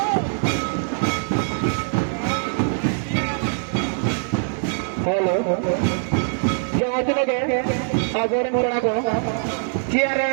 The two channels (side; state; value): left; silent; digital silence